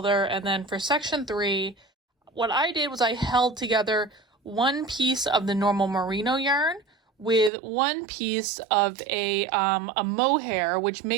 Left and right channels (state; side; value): drops out; left; at 7.5 s